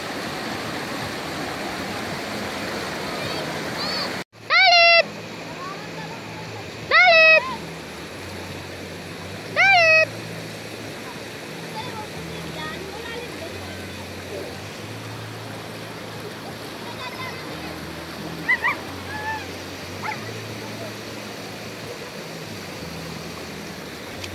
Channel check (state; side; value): identical; both; correlation 1.00